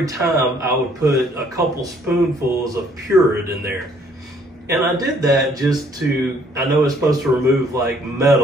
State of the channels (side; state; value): both; normal; correlation 0.63